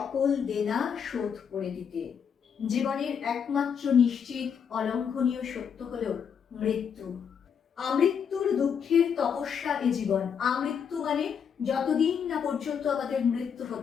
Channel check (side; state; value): right; quieter; 7.3 dB